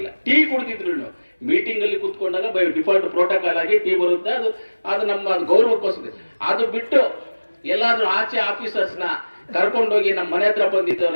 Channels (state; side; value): inverted; both; correlation -1.00